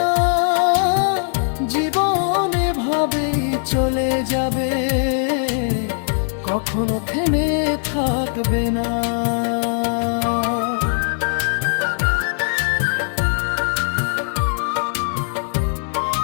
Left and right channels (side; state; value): right; silent; digital silence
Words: জীবন এভাবেই চলে যাবে, কখনো থেমে থাকবে না।